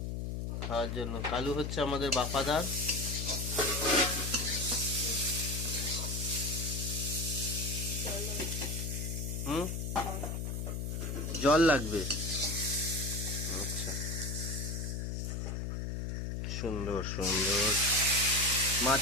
খাওয়ার জন্য। কালু হচ্ছে আমাদের বাফাদার। হুম, জল লাগবে। আচ্ছা, সুন্দর সুন্দর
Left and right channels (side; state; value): left; noise; hum, 3 dB below the sound